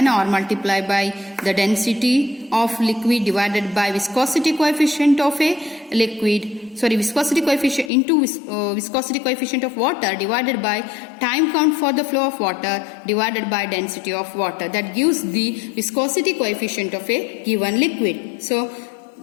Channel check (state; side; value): drops out; right; at 7.9 s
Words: or multiplied by the density of liquid divided by viscosity coefficient of a liquid, viscosity coefficient into viscosity coefficient of water divided by time count for the flow of water divided by density of water. That gives the viscosity coefficient of a given liquid. So